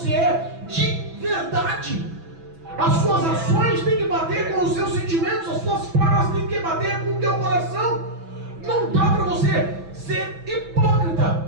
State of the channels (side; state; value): left; late; 6.1 ms